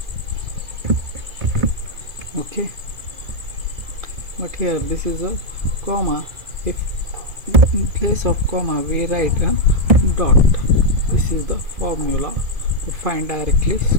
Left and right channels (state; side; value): late; left; 2.4 ms